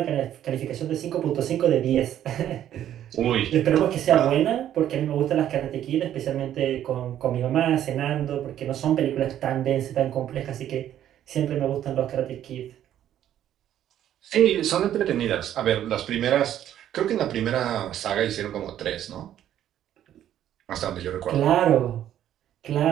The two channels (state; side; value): quieter; left; 11.2 dB